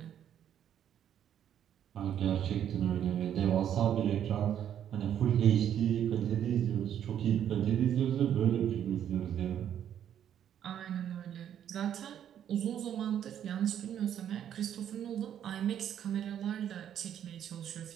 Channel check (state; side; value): quieter; left; 9.8 dB